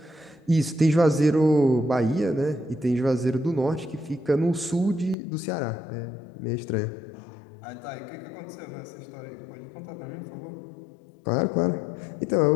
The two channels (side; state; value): right; drops out; at 5.2 s